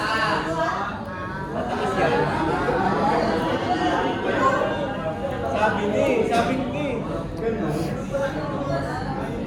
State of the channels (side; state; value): both; identical; correlation 1.00